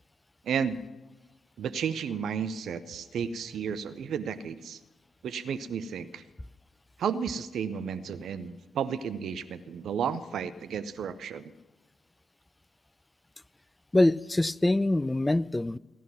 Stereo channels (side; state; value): both; normal; correlation 0.85